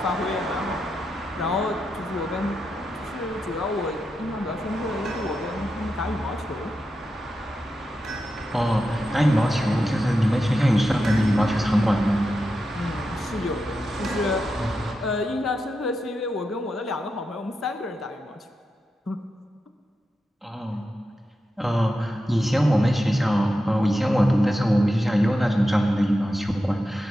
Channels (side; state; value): both; normal; correlation 0.89